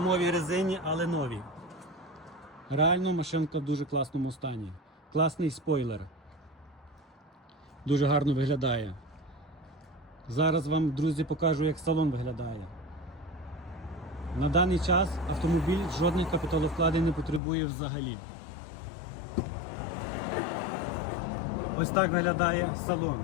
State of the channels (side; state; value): right; drops out; at 17.4 s